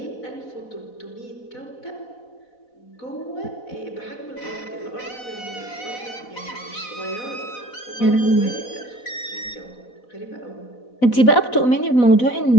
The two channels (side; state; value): right; late; 4.1 ms